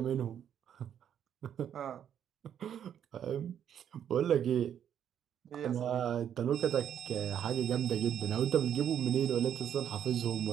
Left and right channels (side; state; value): left; quieter; 9.3 dB